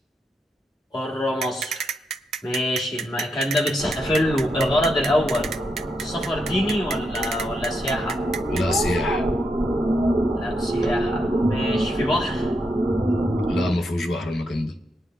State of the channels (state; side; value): normal; both; correlation 0.82